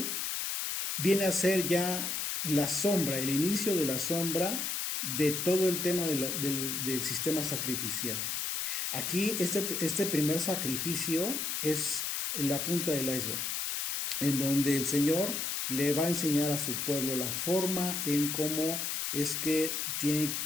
viene a ser ya la sombra, el inicio de la sombra de todo el tema del sistema sacrificial. Aquí este primer sacrificio es la punta del iceberg, en donde el Señor le va a enseñar a su pueblo la forma en cómo es que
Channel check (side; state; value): left; noise; hiss, 1 dB below the sound